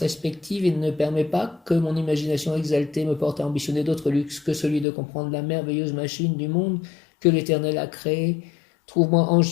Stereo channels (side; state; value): right; drops out; at 4.9 s